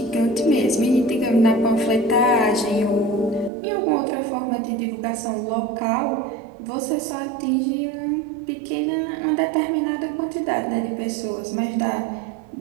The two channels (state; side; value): drops out; left; at 3.5 s